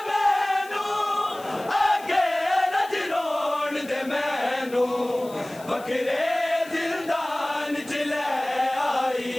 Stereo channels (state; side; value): noise; left; hiss, 20 dB below the sound